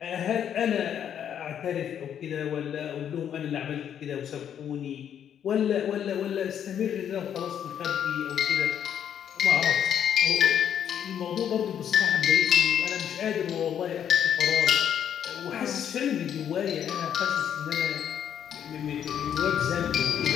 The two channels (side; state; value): right; quieter; 9.2 dB